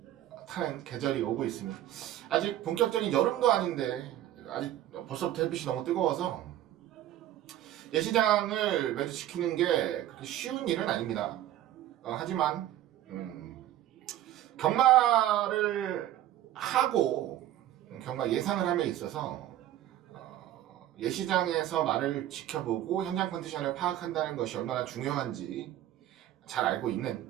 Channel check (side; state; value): left; quieter; 13.0 dB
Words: 타는 계절이 오고 있습니다. 아직 본격적인 여름도 아닌데 아직 벌써부터 햇빛이 너무 뜨거워서 예시장을 매주 지키는 게 그렇게 쉬운 일은 아닙니다. 하지만 경마를 하고 경마 예상을 함에 있어서 예시장에서 말을 지켜보고 현장 컨디션을 파악한다는 것이 얼마나 중요한지 잘 알고